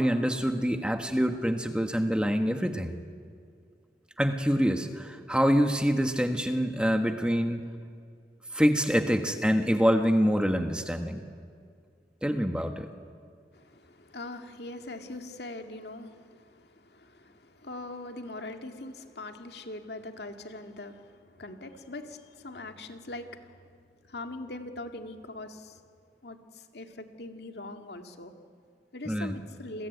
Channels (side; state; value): both; normal; correlation 0.91